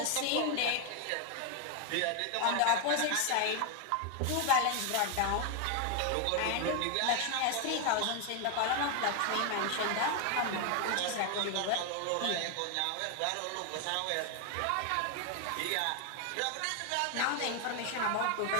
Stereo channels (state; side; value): different; both; correlation 0.01